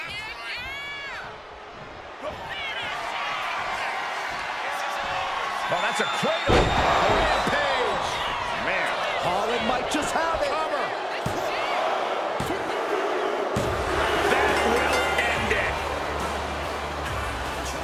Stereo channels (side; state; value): both; identical; correlation 1.00